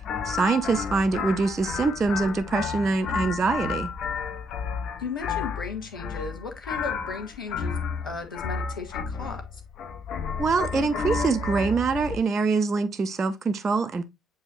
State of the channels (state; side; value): normal; both; correlation 0.75